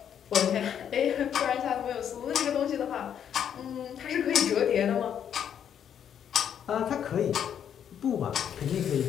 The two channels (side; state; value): right; quieter; 8.9 dB